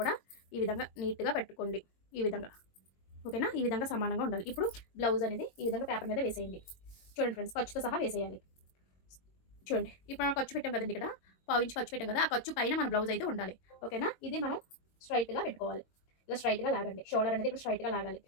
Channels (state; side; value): late; right; 22 ms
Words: కూడా ఈ విధంగా నీట్గా పెట్టుకోండి. ఈ విధంగా. ఓకేనా? ఈ విధంగా సమానంగా ఉండాలి. ఇప్పుడు బ్లౌజ్ అనేది ఈ విధంగా పేపర్ మీద వేసేయండి. చూడండి ఫ్రెండ్స్, ఖర్చుతో సహా వేసేయాలి. చూడండి, ఇప్పుడు మనం ఖర్చు పెట్టాం కదండి, ఇక్కడ పావు ఇంచు ఖర్చు పెట్టాం కదా, ఆ ఖర్చు పైన మన బ్లౌజ్ అయితే ఉండాలి. ఓకేనా? ఇది మనం స్ట్రైట్గా పెట్టుకోవాలి. ఇలా స్ట్రైట్గా లాగండి. షోల్డర్ అనేది ఇక్కడ స్ట్రైట్గా లాగాలి.